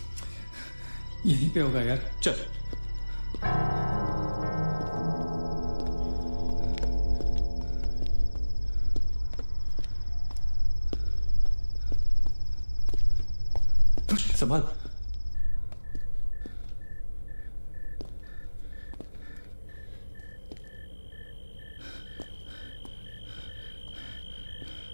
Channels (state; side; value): inverted; both; correlation -1.00